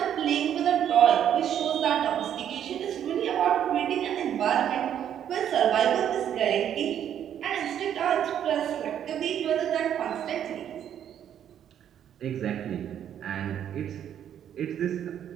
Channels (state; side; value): quieter; left; 9.8 dB